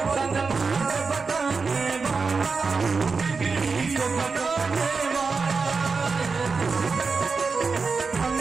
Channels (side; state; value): left; quieter; 4.7 dB